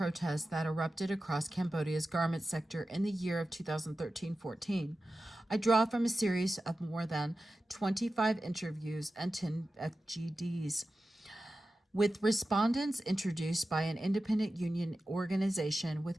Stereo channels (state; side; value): normal; both; correlation 0.93